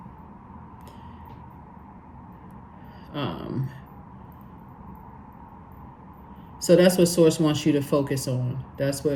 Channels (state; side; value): identical; both; correlation 1.00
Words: So that's what Source wants you to focus on. That's